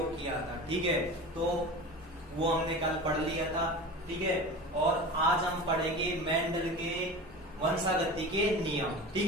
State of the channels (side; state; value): both; normal; correlation 0.32